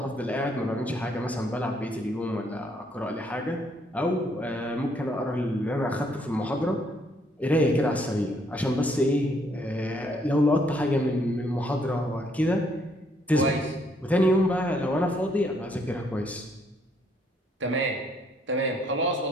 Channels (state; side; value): normal; both; correlation 0.69